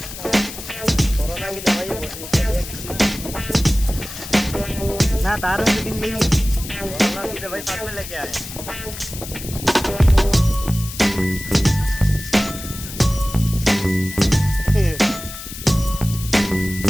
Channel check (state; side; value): noise; left; hiss, 11 dB below the sound